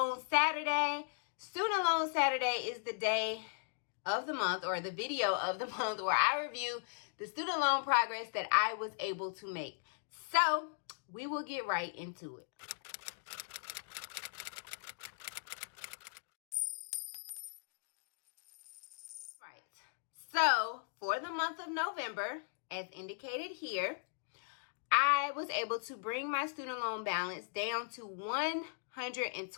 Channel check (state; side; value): silent; right; digital silence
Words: Saturday. Student Loan Saturday is the day of the month, or the video of the month, where I review the student loan progress that I was able to make. So we will get right into it. So for the month of November, as indicated here, I was able to bring my student loan balance down to